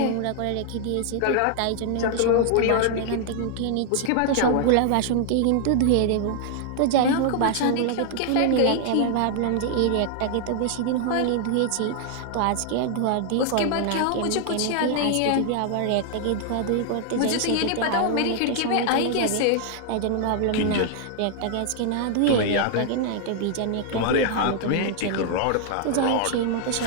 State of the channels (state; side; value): different; both; correlation 0.00